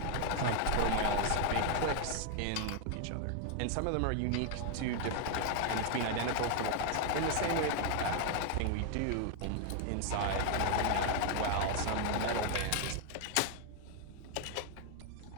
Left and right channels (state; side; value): different; both; correlation 0.00